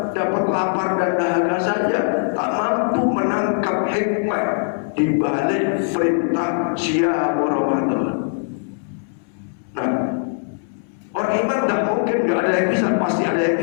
dapat lapar dan dahaga saja, tak mampu menangkap hikmah di balik perintah siyam Ramadan. Nah, orang iman tidak mungkin nggak ada yang bisa, pasti ada yang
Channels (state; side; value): silent; right; 65 dB below the other